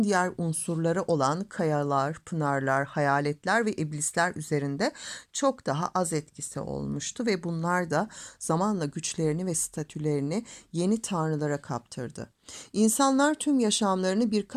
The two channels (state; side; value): identical; both; correlation 1.00